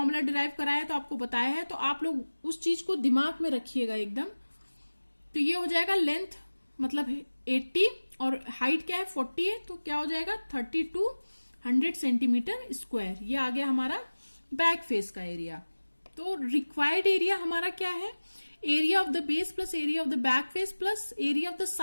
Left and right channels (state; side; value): inverted; both; correlation -1.00